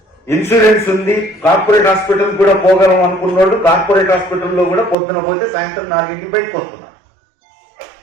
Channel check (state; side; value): drops out; left; at 5.0 s